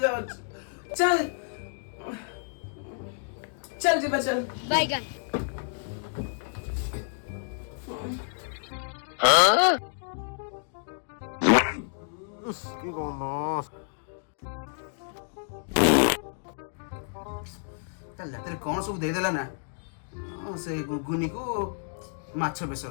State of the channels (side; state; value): right; silent; digital silence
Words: ଯାଉଛି। ଚାଲ चल जी चल बैगन কি গন্ধ ତା ରାତିରେ କଣ ସବୁ ଦେଇଦେଲା ନା ସେ ଗୁଗୁନିକୁ ମାଛ